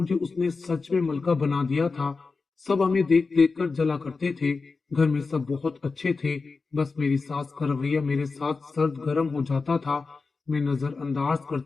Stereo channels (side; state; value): right; quieter; 4.3 dB